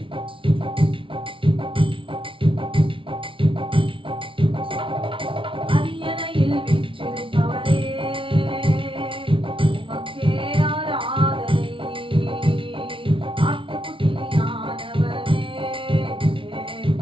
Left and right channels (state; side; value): late; left; 0.25 ms